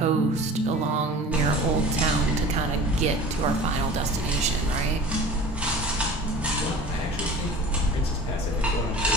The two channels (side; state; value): both; normal; correlation 0.40